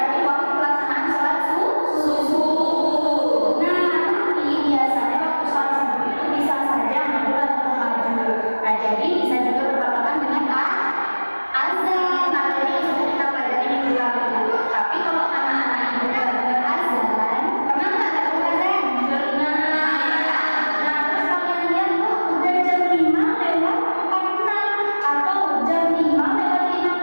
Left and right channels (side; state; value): both; inverted; correlation -1.00